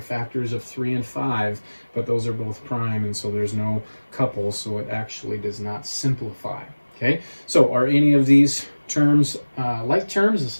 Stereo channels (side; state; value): both; inverted; correlation -1.00